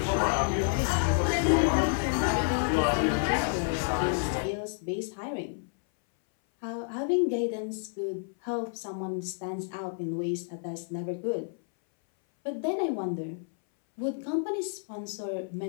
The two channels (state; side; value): silent; right; 58 dB below the other